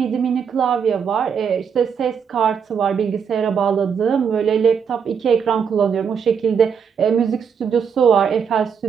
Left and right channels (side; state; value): left; quieter; 6.8 dB